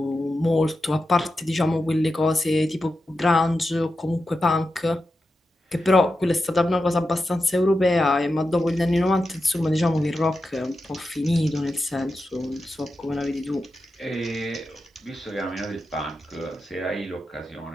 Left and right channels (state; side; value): normal; both; correlation 0.90